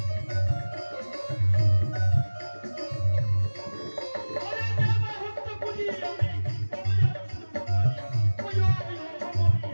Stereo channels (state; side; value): inverted; both; correlation -1.00